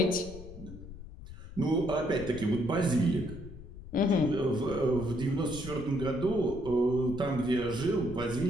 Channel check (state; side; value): noise; left; rumble, 14 dB below the sound